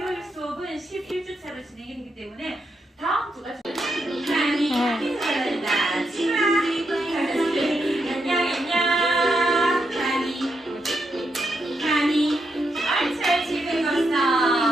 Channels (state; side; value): normal; both; correlation 0.82